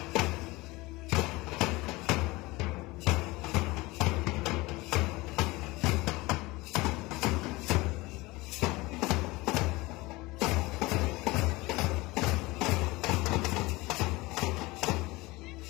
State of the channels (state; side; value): quieter; right; 21.8 dB